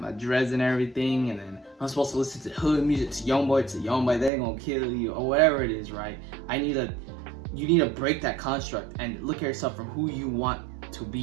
my dreads and everything, and then I'm supposed to listen to hood music, to Youngboy, they ain't gonna kill you, or whatever it is, right? You need to break that construct and look at yourself from who you want to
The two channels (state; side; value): drops out; left; at 4.3 s